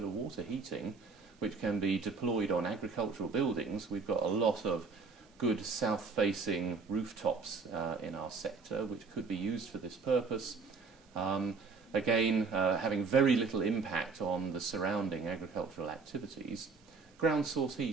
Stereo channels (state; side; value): quieter; left; 4.7 dB